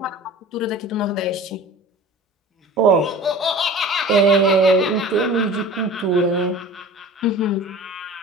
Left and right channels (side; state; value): both; normal; correlation 0.40